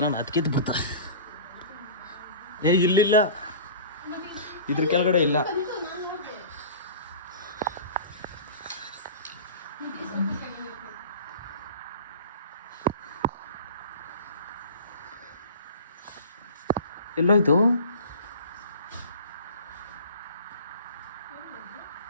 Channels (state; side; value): inverted; both; correlation -0.38